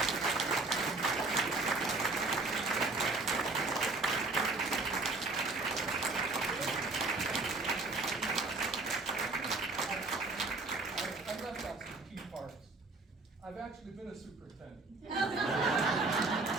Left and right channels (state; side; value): quieter; left; 3.5 dB